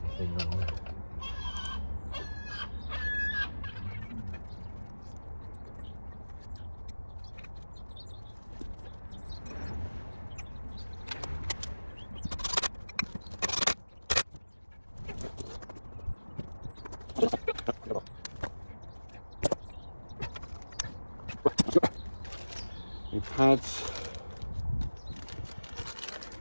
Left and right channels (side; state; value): both; inverted; correlation -1.00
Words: thing on there. Your pads.